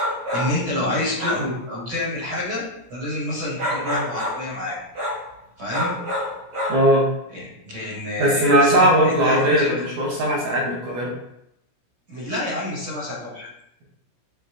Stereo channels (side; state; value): left; late; 17 ms